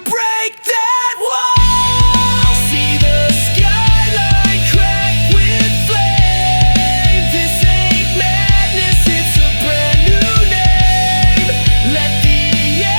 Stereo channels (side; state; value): both; inverted; correlation -1.00